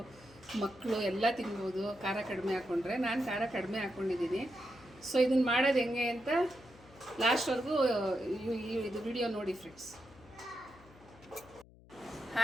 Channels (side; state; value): left; noise; hum, 23 dB below the sound